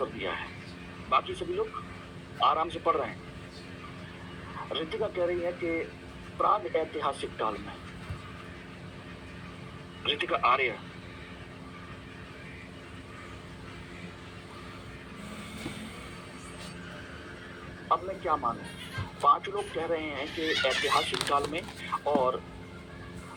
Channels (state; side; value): identical; both; correlation 1.00